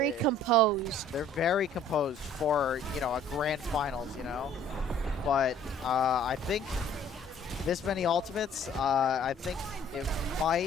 composed. they're very composed for, you know, a grand finals, you know. But I think this many ultimates, I think it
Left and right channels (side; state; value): both; normal; correlation 0.56